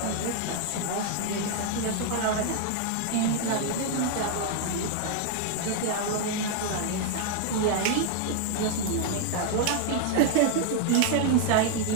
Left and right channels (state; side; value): different; both; correlation 0.00